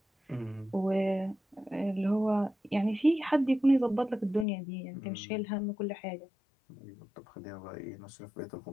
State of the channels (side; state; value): right; drops out; at 4.5 s